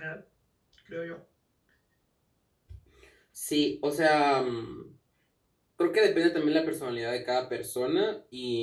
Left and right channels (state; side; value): identical; both; correlation 1.00